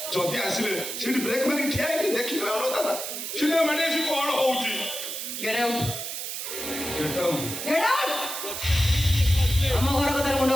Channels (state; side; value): noise; right; hiss, 5 dB below the sound